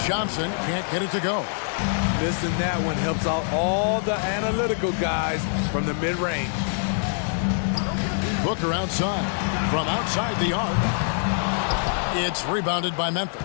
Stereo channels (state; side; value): silent; right; digital silence